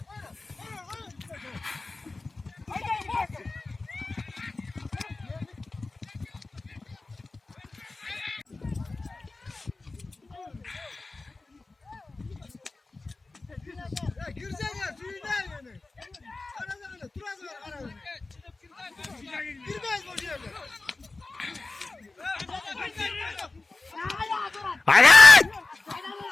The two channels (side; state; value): right; quieter; 3.4 dB